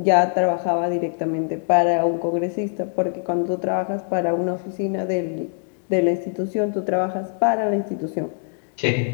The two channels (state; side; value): silent; right; digital silence